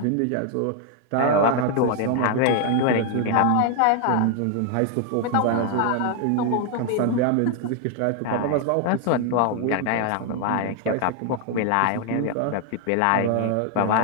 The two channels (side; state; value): both; different; correlation 0.00